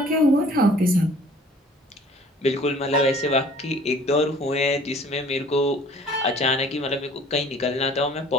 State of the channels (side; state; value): both; normal; correlation 0.52